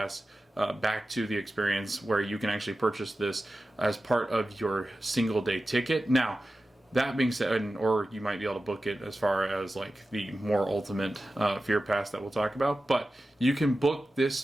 back to the experience, where you can actually purchase this as part of your single day ticket. Now, that being said, or you might be able to book it as far as like the more ultimate Fear Pass that we'll talk about, but you can book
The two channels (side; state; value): both; normal; correlation 0.94